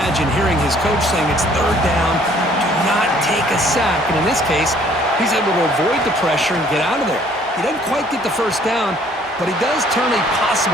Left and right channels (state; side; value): normal; both; correlation 0.59